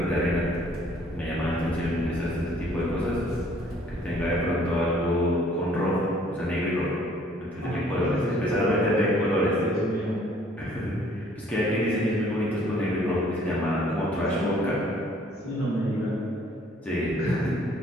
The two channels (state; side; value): normal; both; correlation 0.59